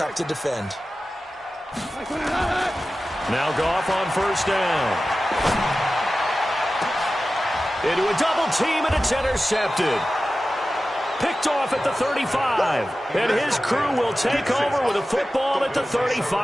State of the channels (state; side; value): normal; both; correlation 0.95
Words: to defend. Now Goff on first down. Into a double team, and it's intercepted. Picked off at the 35. And his crew will take over with a football at the